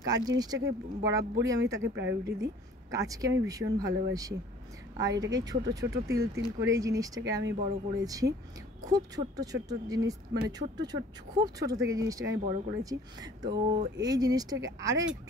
কাজ জিনিসটাকে বরাবরই আমি তাকে প্রায়োরিটি দিই, কাজকে আমি ভীষণ ভালোবাসি। আর এটাকে ছোট ছোট তিল তিল করে এই জিনিসটাকে আমি বড় করেছি, খুব ছোট্ট ছোট্ট জিনিস, মানে খুব ছোট থেকে জিনিসটাকে আমি বড় করেছি। তো এই জিনিসটাকে আরও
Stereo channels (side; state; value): both; normal; correlation 0.52